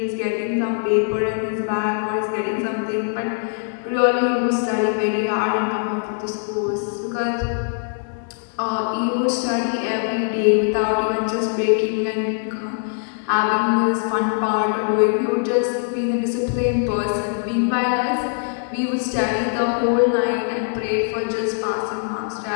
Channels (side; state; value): right; silent; 64 dB below the other